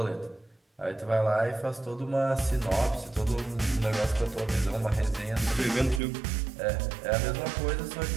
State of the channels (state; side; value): drops out; left; at 6.0 s